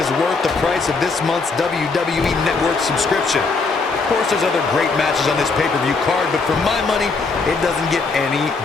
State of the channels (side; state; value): right; quieter; 4.2 dB